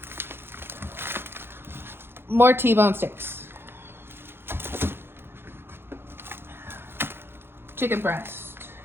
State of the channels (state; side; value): late; left; 0.11 ms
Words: More T-bone steaks. Chicken breast.